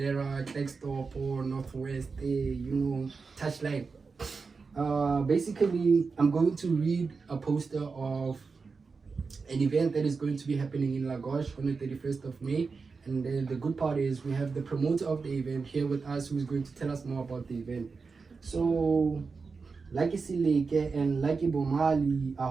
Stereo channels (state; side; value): quieter; left; 4.7 dB